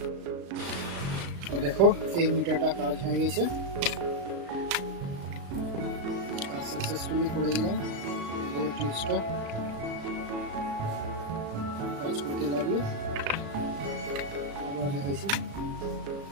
তো দেখো এই মিটারটা কাজ হয়ে গেছে, কাজ সাকসেসফুলি করে দিলাম। এই টিপসটা কাজ করতে লাগলো, আবার দেখাইছি।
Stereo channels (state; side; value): late; left; 35 ms